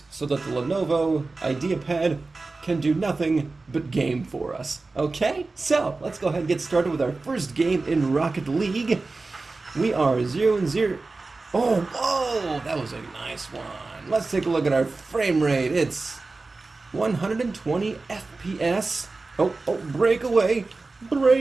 so that the Lenovo IdeaPad can do nothing but game for us. Okay, so let's go ahead and get started with our first game in Rocket League. We are 0-0. Oh, whoa, that was a nice one. Let's take a look at our frame rate. It's 120 FPS. Oh, breakaway,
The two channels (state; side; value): quieter; left; 3.6 dB